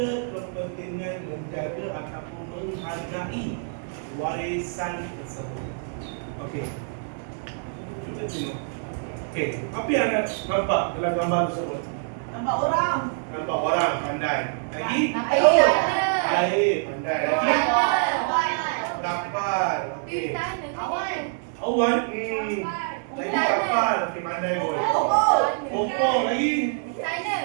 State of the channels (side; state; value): left; silent; digital silence